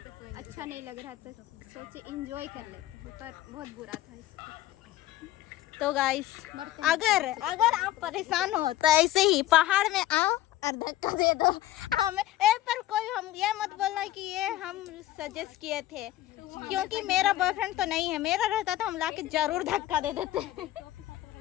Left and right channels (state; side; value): quieter; right; 14.7 dB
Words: अच्छा नहीं लग रहा था, सोचे एंजॉय कर लेते हैं, पर बहुत बुरा था इसको। तो गाइस अगर आप परेशान हो तो ऐसे ही पहाड़ में आओ और धक्का दे दो हमें। पर कोई हम ये मत बोलना कि ये हम सजेस्ट किए थे, क्योंकि मेरा बॉयफ्रेंड तो नहीं है। मेरा रहता तो हम लाके जरूर धक्का दे देते